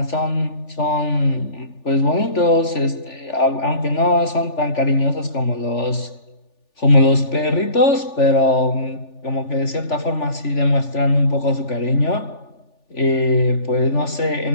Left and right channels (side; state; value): right; late; 3.4 ms